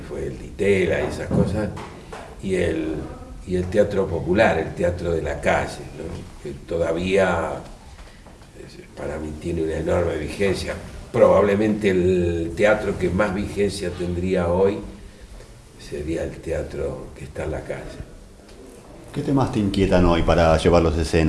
fue el Ditela y esas cosas, y el teatro popular, el teatro de la calle, ¿no? Que todavía para mí tiene una enorme vigencia. Probablemente el teatro que más vigencia tendría hoy sería el teatro que está en la calle. ¿Qué temas te inquietan hoy para llevarlos a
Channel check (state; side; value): identical; both; correlation 1.00